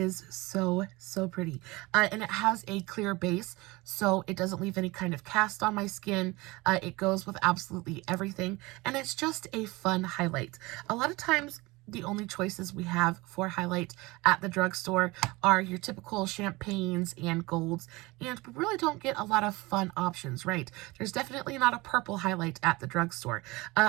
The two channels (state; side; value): quieter; left; 22.6 dB